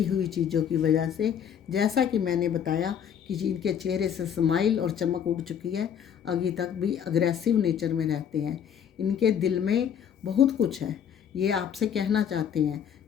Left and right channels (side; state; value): right; quieter; 8.5 dB